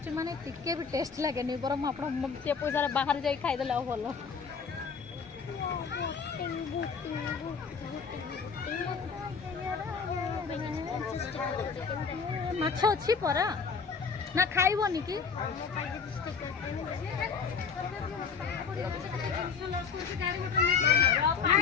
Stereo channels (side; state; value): right; quieter; 5.7 dB